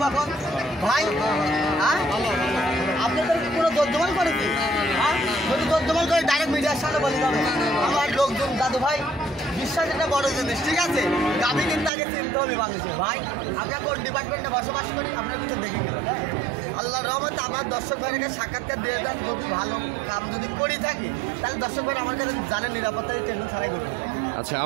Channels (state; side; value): drops out; left; at 11.9 s